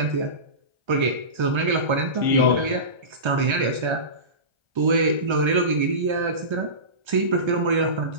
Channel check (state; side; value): late; left; 1.3 ms